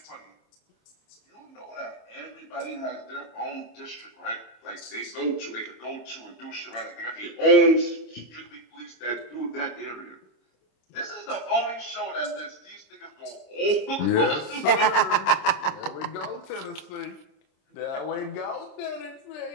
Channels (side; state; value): right; late; 27 ms